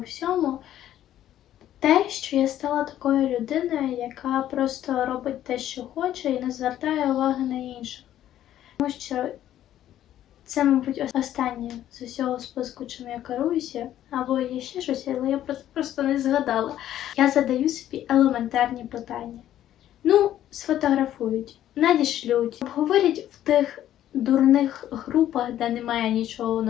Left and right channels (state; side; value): quieter; right; 12.0 dB